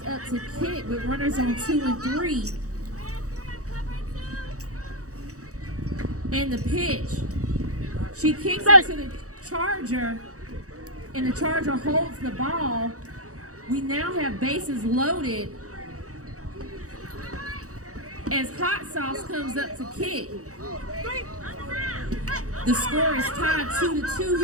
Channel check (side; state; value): left; late; 0.65 ms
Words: up to kick with runners on 2 and 3. And the pitch. She kicks it to the Charger, and the Charger holds the ball. We now have bases loaded as Hot Sauce comes up to kick. The score is tied 2-2